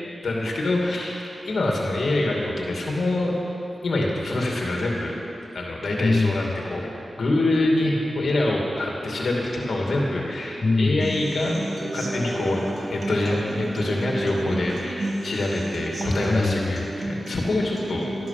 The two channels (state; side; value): normal; both; correlation 0.93